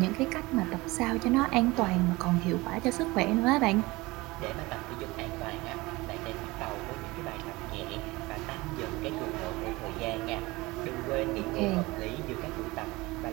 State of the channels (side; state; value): left; quieter; 21.8 dB